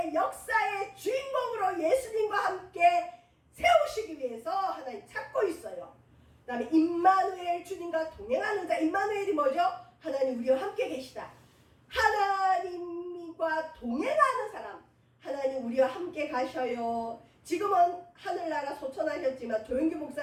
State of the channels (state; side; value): identical; both; correlation 1.00